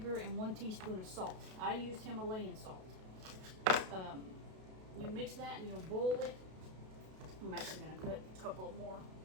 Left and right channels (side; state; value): left; late; 32 ms